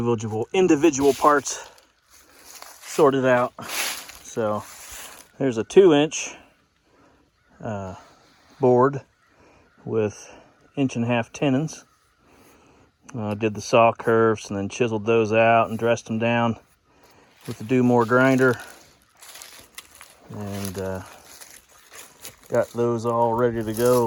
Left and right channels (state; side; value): identical; both; correlation 1.00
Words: parts sorted out. So there's a 2-inch board with 1.5 inch tenons. I did the saw curves and then chiseled those out and dressed them down with the Do More grinder, and got those all ready to